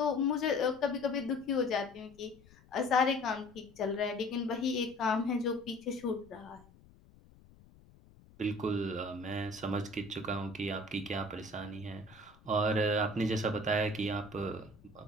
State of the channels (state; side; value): noise; left; rumble, 25 dB below the sound